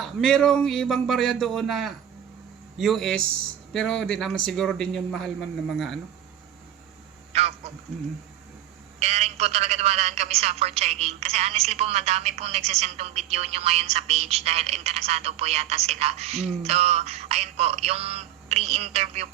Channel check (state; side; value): quieter; left; 11.4 dB